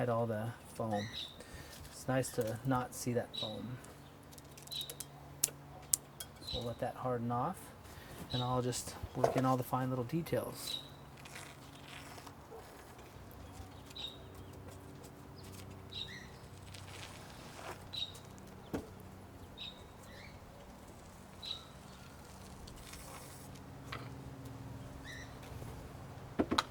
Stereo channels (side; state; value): both; identical; correlation 1.00